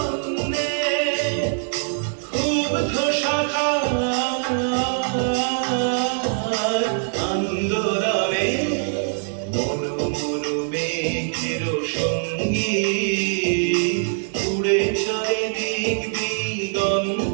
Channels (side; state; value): left; silent; 61 dB below the other